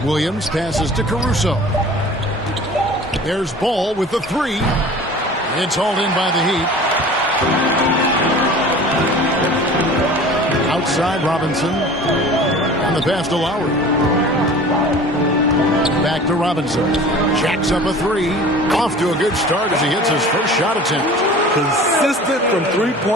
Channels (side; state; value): both; normal; correlation 0.42